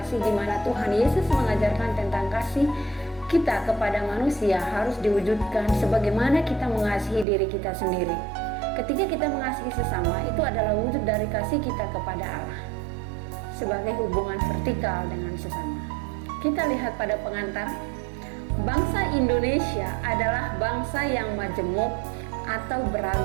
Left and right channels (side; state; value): left; drops out; at 7.2 s